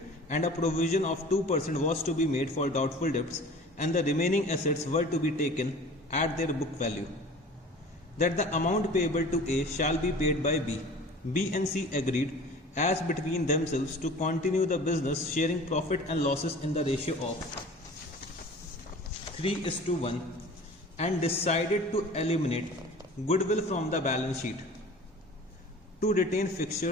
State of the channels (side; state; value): both; normal; correlation 0.42